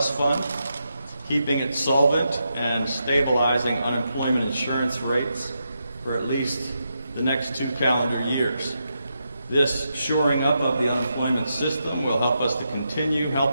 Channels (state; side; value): inverted; both; correlation -0.84